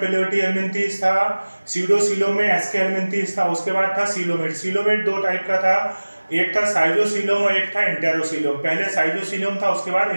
हेलमिंथीस था, सीडोसीलोम में एस्के हेलमिंथीस था। उसके बाद था सीलोमेट। सीलोमेट 2 टाइप का था, एक था साइजोसीलोम और एक था इंटेरोसीलोम। पहले साइजोसीलोम था, उसके बाद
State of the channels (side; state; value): both; inverted; correlation -1.00